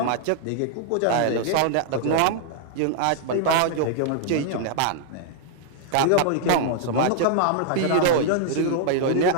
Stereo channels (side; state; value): both; different; correlation -0.01